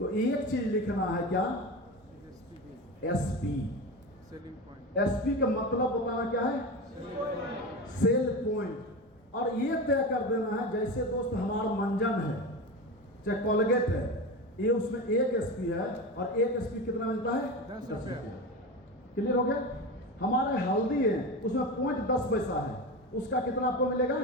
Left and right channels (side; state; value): both; normal; correlation 0.25